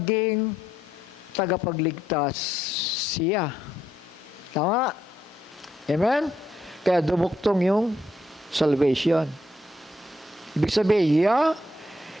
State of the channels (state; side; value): normal; both; correlation 0.76